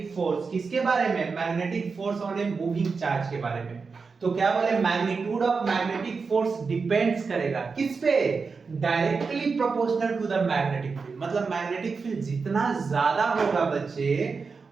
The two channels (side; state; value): left; quieter; 4.8 dB